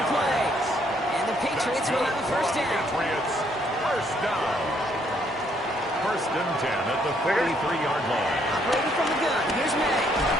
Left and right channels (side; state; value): both; normal; correlation 0.69